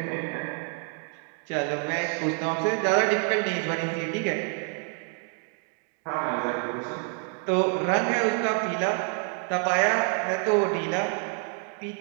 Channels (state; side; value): quieter; left; 37.9 dB